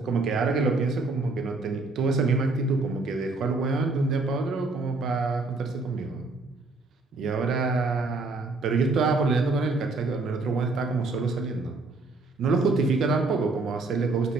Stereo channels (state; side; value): quieter; left; 3.5 dB